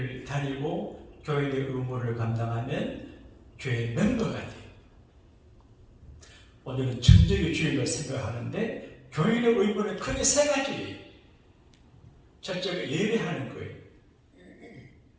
다니고 교회의 의무를 감당하면 교회 멤버가 돼요. 오늘은 천적의 주일을 생각하는데 교인의 의무는 크게 세 가지예요. 첫째가 예배하는 거예요.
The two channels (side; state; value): both; identical; correlation 1.00